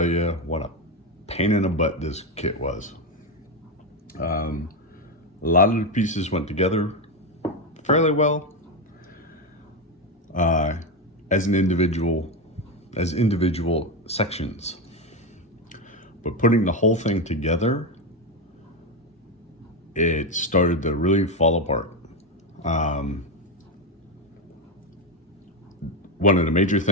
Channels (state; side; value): normal; both; correlation 0.11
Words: you what a pain in the butt this kit was. A lot of the pieces went together fairly well. As individual sections, but putting the whole thing together, it started to really fall apart. One of the major